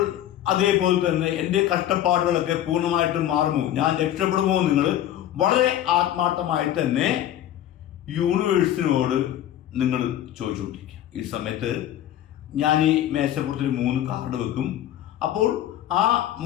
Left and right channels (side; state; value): right; quieter; 12.0 dB